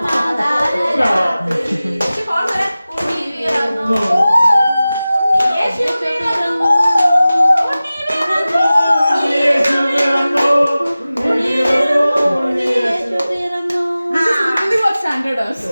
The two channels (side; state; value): both; inverted; correlation -0.97